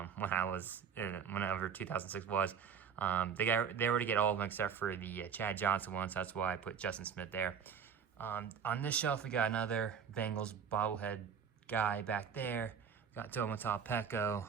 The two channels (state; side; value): quieter; left; 7.1 dB